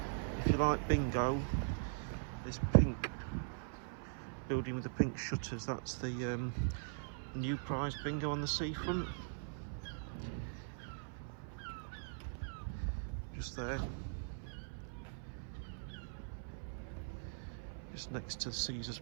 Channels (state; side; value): silent; left; 50 dB below the other